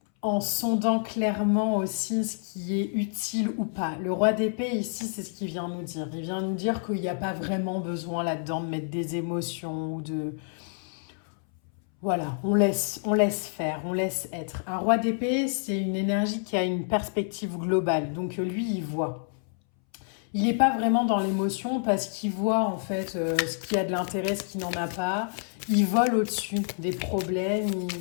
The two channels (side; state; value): right; silent; 59 dB below the other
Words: en sondant clairement aussi ce qui est utile ou pas. Le roi d'épée ici, c'est ce qu'il vient nous dire. Il vient nous dire qu'il n'y a pas vraiment besoin là-dedans de mettre des émotions ou de... Voilà, on laisse faire, on laisse être. Un roi d'épée, c'est une énergie qui a une perspective globale. Donc lui, il voit. Il n'est pas vraiment dans l'émotion parce qu'il voit en fait ce qui a de l'intérêt, ce qui n'en a pas. Il vole au-dessus des problèmes.